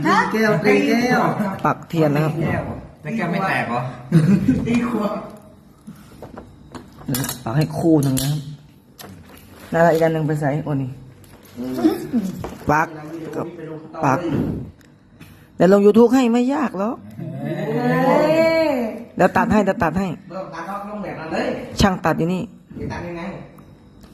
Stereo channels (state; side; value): identical; both; correlation 1.00